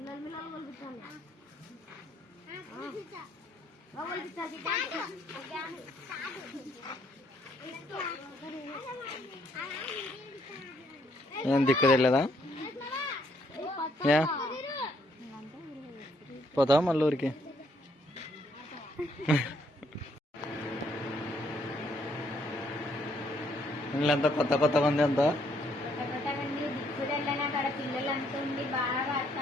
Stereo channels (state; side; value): normal; both; correlation 0.70